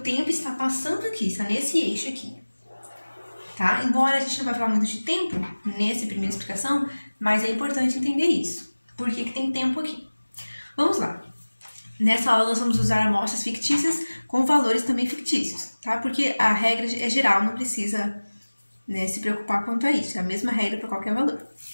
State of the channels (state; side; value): inverted; both; correlation -1.00